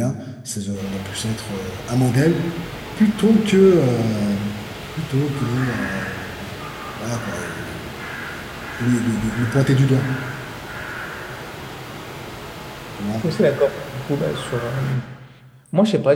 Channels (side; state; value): both; identical; correlation 1.00